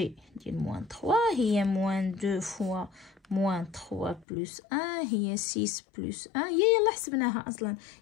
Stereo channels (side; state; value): right; drops out; at 4.2 s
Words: ديال موان 3 هي موان 2 فوا موان 3 بلس 1 هي 6 بلس 1 هي يلا حسبناها اصلا